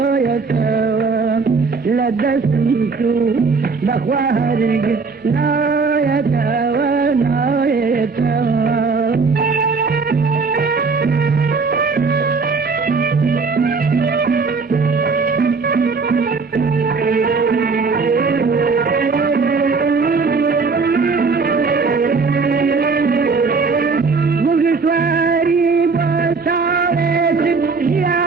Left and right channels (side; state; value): left; quieter; 4.6 dB